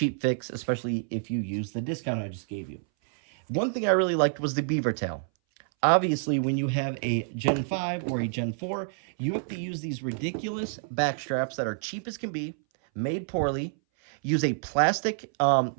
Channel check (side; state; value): left; silent; 59 dB below the other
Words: fix, especially if you use the discount I just gave you. One thing I really liked was the beaver tail. Obviously, when you have a Gen 5 or a Gen 4, you have to use these ridiculous back straps that are cheap as can be, made poorly, use a plastic